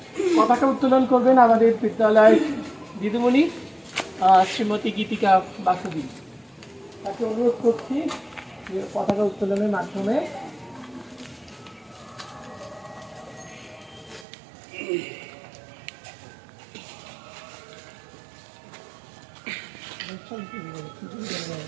পতাকা উত্তোলন করবেন আমাদের বিদ্যালয়ের দিদিমণি শ্রীমতী গীতিকা বাসুদেবী। তাকে অনুরোধ করছি পতাকা উত্তোলনের মাধ্যমে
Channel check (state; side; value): drops out; left; at 14.2 s